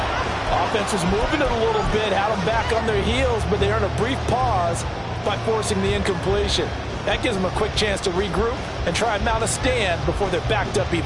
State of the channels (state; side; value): identical; both; correlation 1.00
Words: Offense was moving it a little bit, had them back on their heels, but they earned a brief pause by forcing the incompletion. That gives them a quick chance to regroup and try and mount a stand before they're backed up